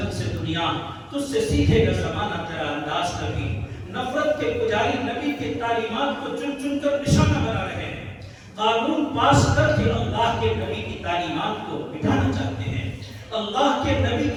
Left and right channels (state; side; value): identical; both; correlation 1.00